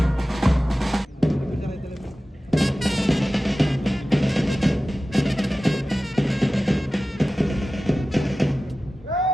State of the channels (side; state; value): both; normal; correlation 0.95